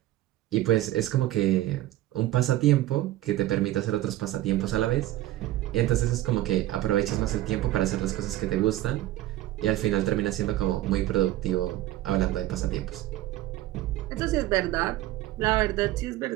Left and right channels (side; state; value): left; quieter; 15.0 dB